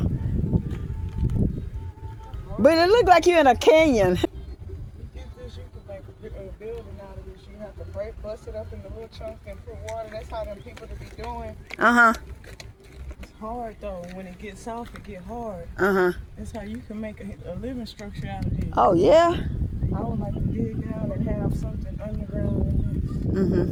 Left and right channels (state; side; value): identical; both; correlation 1.00